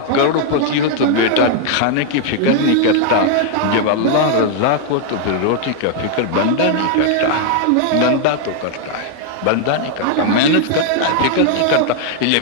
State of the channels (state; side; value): different; both; correlation 0.00